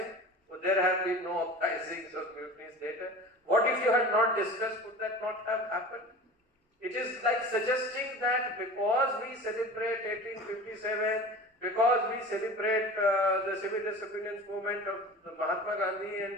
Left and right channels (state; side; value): normal; both; correlation 0.37